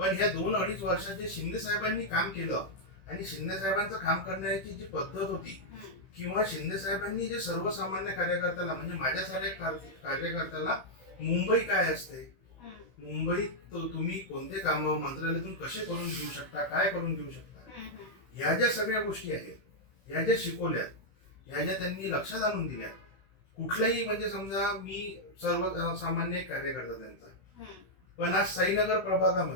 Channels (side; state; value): right; late; 16 ms